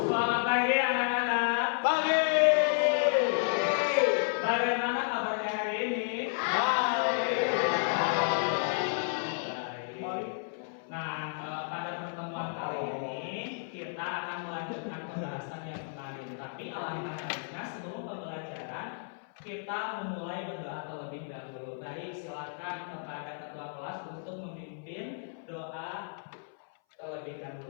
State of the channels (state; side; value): silent; right; 56 dB below the other